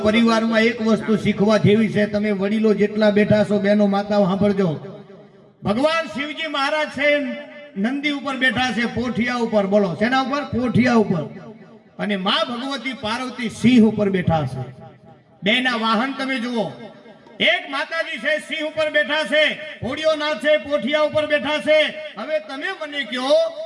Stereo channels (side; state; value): both; identical; correlation 1.00